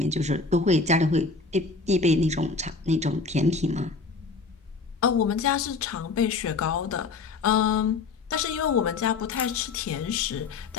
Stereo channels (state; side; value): quieter; right; 4.3 dB